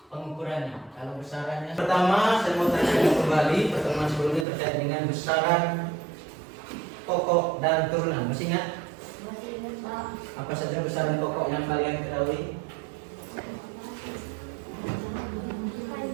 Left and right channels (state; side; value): drops out; left; at 4.5 s